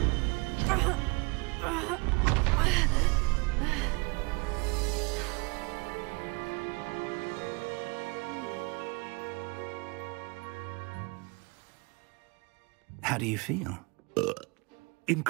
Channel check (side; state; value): left; quieter; 28.5 dB